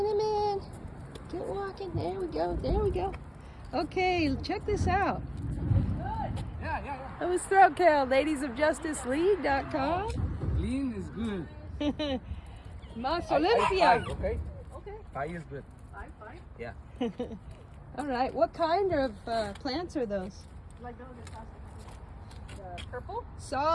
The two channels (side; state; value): both; identical; correlation 1.00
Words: Get walking. There we go. There we go. Okay, check this out. That was Throat Kill, ladiesofjusticeleague.com. Clean is good. Mas I Olympia. five, okay? Okay. 5 is good. Five. Yeah. All right. What kind of plants are those? Like those the purple?